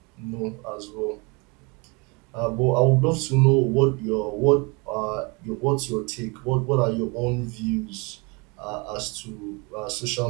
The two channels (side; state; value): left; quieter; 29.2 dB